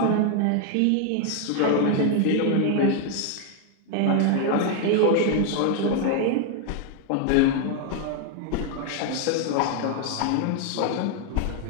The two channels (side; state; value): both; different; correlation 0.00